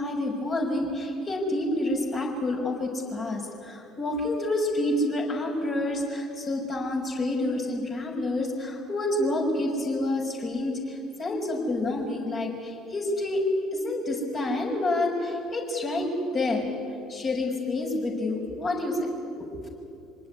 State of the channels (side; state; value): both; normal; correlation 0.67